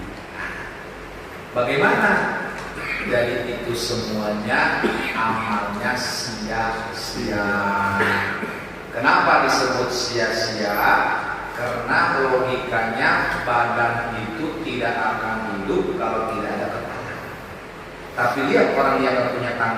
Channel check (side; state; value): both; identical; correlation 1.00